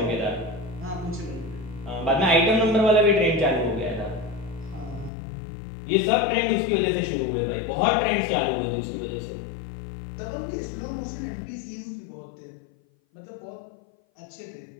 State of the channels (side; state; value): right; drops out; at 5.1 s